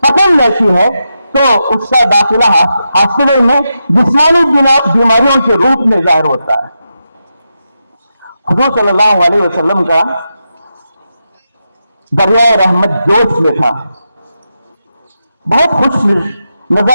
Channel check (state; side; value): inverted; both; correlation -0.87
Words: پکڑ لیتی ہے تو اس کا داخلہ ہاسپٹل میں جسمانی بیماریوں کے روپ میں ظاہر ہوتا ہے۔ حضور صلی اللہ علیہ وسلم کا دریائے رحمت جوش میں تھا، بہت خوش